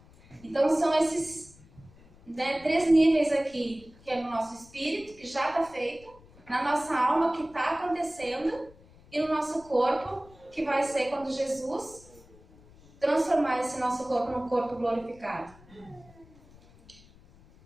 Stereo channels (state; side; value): noise; left; rumble, 25 dB below the sound